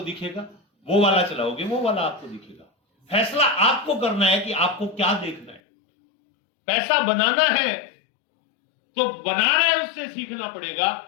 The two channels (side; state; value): right; drops out; at 5.6 s